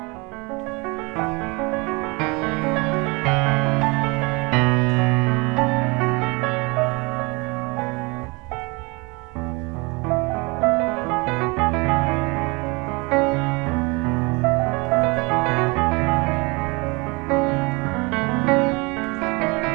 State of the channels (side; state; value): left; quieter; 27.5 dB